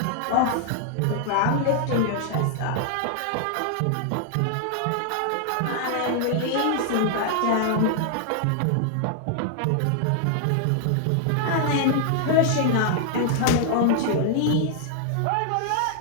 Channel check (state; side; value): different; both; correlation -0.01